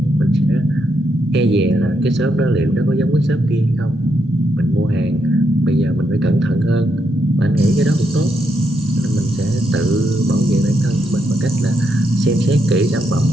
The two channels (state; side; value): normal; both; correlation 0.79